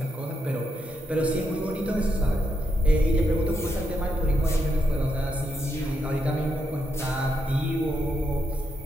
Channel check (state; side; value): normal; both; correlation 0.81